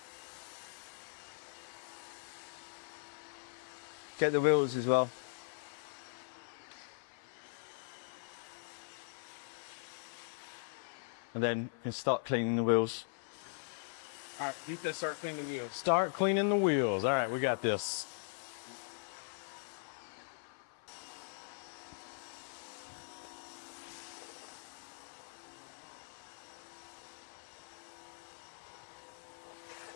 Get the wheels as well. And then you can start cleaning the wheels. All right, you can start cleaning the wheels. Start cleaning the wheels. All right, we got this.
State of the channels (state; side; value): silent; right; 51 dB below the other